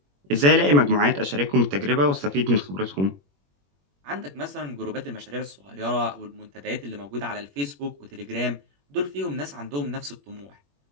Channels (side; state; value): left; late; 21 ms